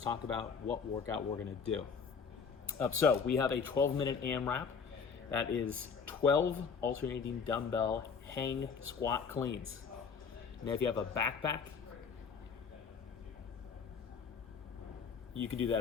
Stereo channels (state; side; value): quieter; right; 5.9 dB